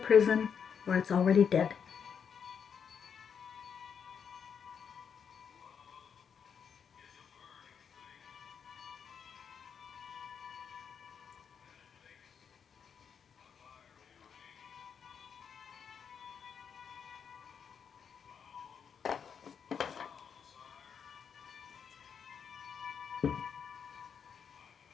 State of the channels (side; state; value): right; quieter; 7.1 dB